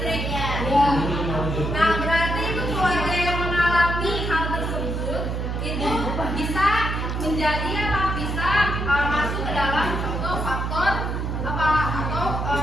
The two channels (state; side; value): noise; right; hum, 2 dB below the sound